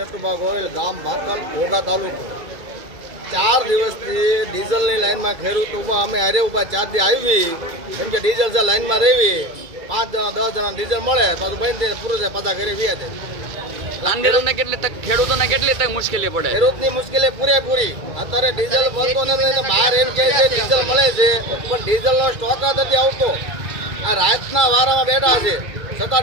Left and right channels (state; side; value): late; left; 2.3 ms